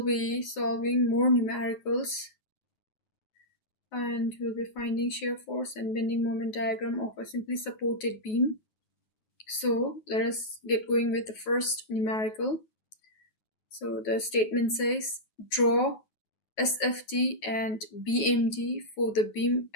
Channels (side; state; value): right; late; 9.3 ms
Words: be solving more numericals and we'll be finding shear force and bending moment diagram of a simply supported beam. So let us get going with the first numerical. So the statement says draw SFT and BMD for the beam